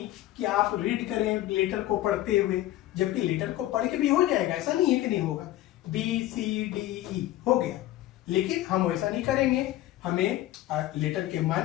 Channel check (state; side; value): quieter; right; 14.8 dB